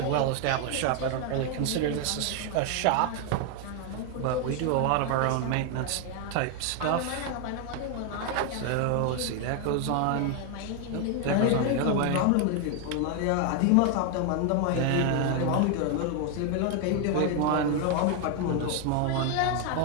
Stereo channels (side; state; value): both; different; correlation 0.01